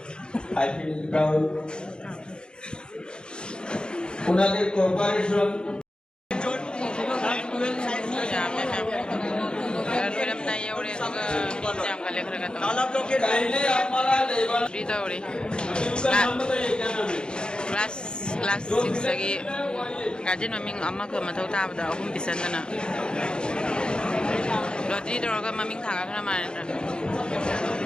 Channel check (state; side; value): late; right; 0.049 ms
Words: I feel proud. ওনাদের cooperation Class 6 lagi gajen maming amma ke matau ta bada ahum pisan na lottery doroga maming thaga khana manen